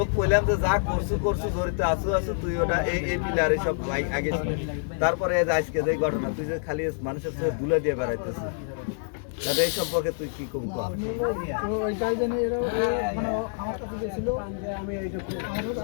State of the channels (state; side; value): silent; right; digital silence